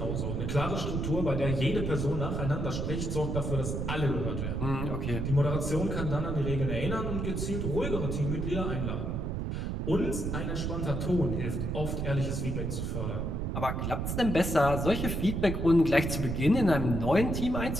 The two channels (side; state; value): right; noise; rumble, 2 dB below the sound